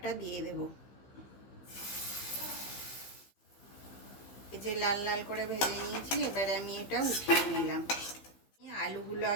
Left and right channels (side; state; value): right; late; 15 ms